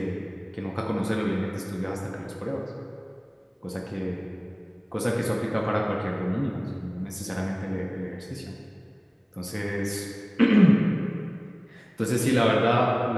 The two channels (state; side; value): identical; both; correlation 1.00